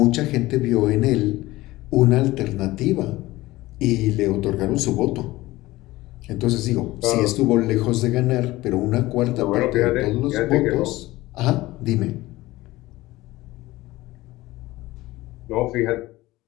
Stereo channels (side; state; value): right; quieter; 18.4 dB